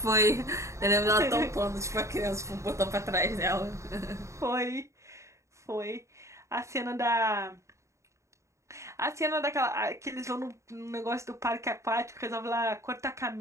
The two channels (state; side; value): late; left; 0.14 ms